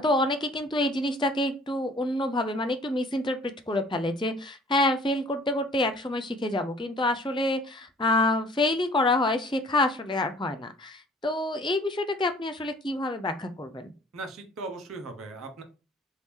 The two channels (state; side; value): normal; both; correlation 0.53